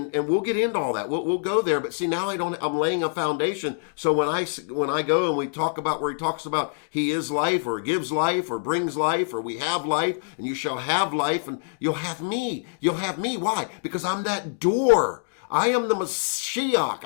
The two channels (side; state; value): right; silent; digital silence